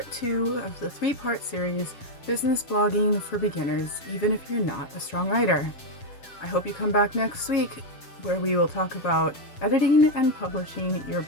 2 of the 3-part series, Business Blogging for Beginners, even if you're not a strong writer. I hope you come back next week where we will talk about editing and publishing your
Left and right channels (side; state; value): right; late; 7.2 ms